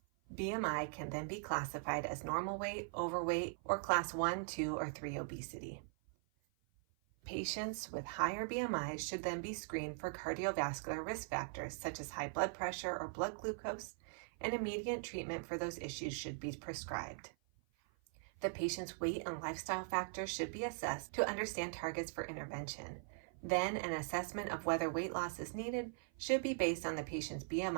BMI can then be classified as normal weight, overweight, or class 1, 2, or 3 obesity. Patients with higher BMIs should then be screened for cardiovascular risk factors such as high blood pressure or blood glucose, and immediate treatment for those issues should be prescribed. The patient's weight and lifestyle factors should be assessed to understand targets for intervention. Then an assessment of whether weight loss is needed should be based on the patient's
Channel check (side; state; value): left; silent; 50 dB below the other